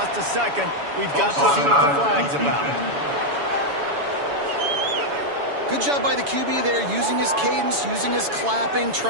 a second. We've got to see what the flag's about. Good job by the QB there, using his cadence, using his clapping,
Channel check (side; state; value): left; late; 7.0 ms